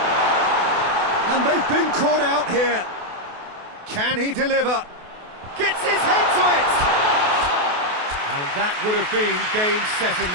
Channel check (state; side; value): late; left; 28 ms